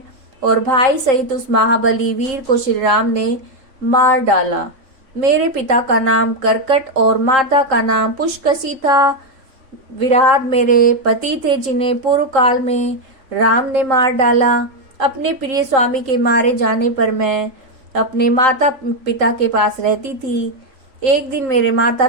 और भाई सहित उस महाबली वीर को श्री राम ने मार डाला। मेरे पिता का नाम करकट और माता का नाम पुष्कसी था। विराट मेरे पति थे जिन्हें पूर्व काल में राम ने मार डाला। अपने प्रिय स्वामी के मारे जाने पर मैं अपने माता पिता के पास रहती थी। एक दिन मेरे माता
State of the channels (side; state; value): left; late; 3.8 ms